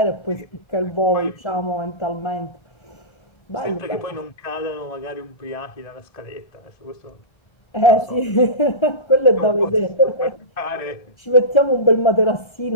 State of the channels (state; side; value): late; right; 1.3 ms